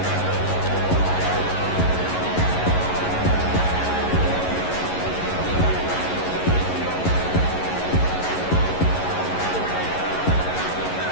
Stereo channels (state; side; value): late; right; 11 ms